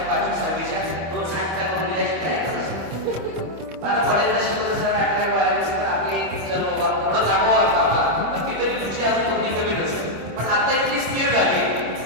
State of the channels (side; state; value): left; late; 26 ms